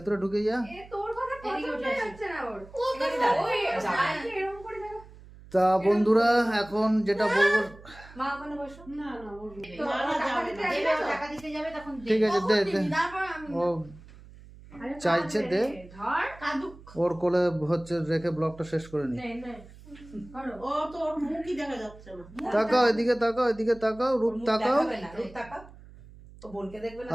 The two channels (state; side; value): noise; right; hum, 20 dB below the sound